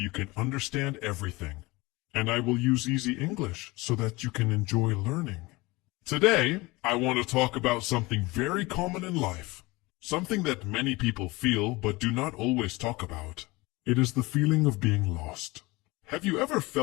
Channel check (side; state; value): right; quieter; 22.8 dB